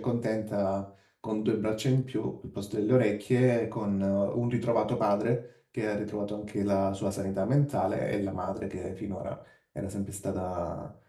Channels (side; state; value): both; identical; correlation 1.00